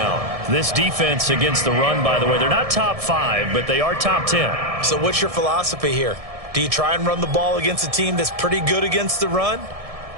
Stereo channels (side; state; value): left; late; 1.7 ms